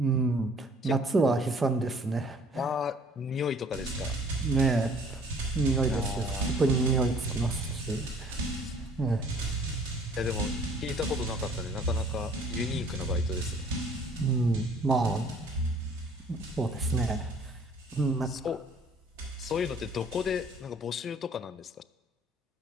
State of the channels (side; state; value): both; normal; correlation 0.55